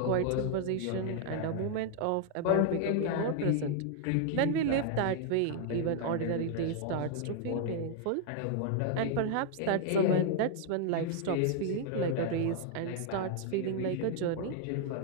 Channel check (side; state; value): both; different; correlation 0.00